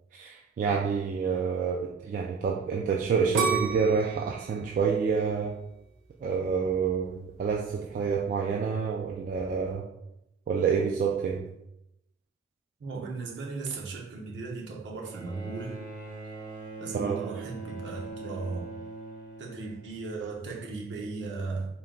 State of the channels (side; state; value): left; quieter; 5.3 dB